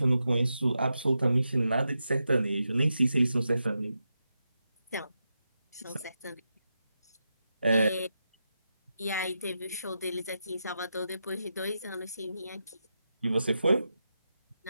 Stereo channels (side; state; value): both; inverted; correlation -0.88